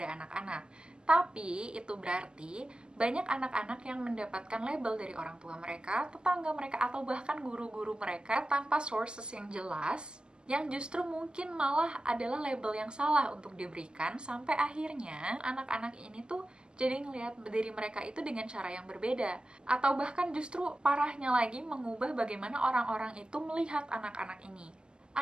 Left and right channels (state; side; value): late; left; 0.053 ms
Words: anak-anak. Tapi, itu berarti banyak anak-anak yang mendapatkan label dari orang tua mereka, tetangga mereka, atau bahkan guru-guru mereka tanpa sources yang jelas, yang justru mungkin malah adalah label yang salah untuk diberikan, sampai akhirnya anak-anak ini tuh jadi ngelihat diri mereka itu dengan cara yang berbeda. Atau bahkan justru parahnya lagi mengubah bagaimana orang-orang itu melihat anak-anak ini.